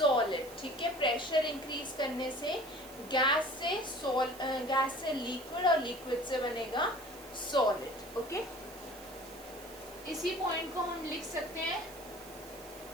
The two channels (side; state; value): right; noise; hiss, 18 dB below the sound